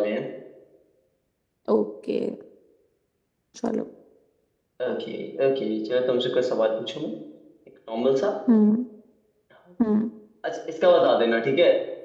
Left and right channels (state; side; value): identical; both; correlation 1.00